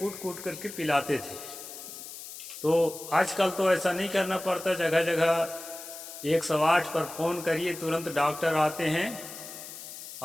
कूट करके पिलाते थे। तो आजकल तो ऐसा नहीं करना पड़ता, जगह जगह 108 पर फ़ोन करिए तुरंत डॉक्टर आते हैं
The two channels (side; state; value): left; noise; hiss, 12 dB below the sound